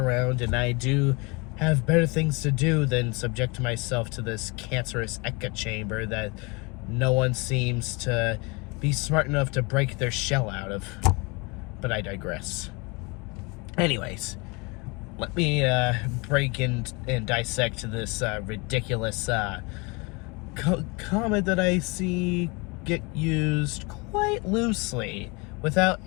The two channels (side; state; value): right; quieter; 28.3 dB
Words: and I do have better things to do than subject myself to this cancerous echo chamber that no one seems to be smart enough to break their shell out of. But I digress. Anyways, let me break in and dissect this ridiculous comment that I see get used quite loosely without